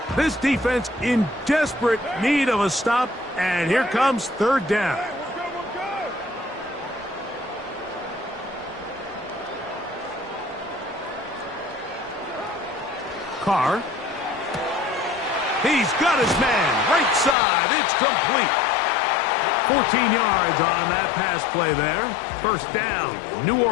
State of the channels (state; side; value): drops out; right; at 17.4 s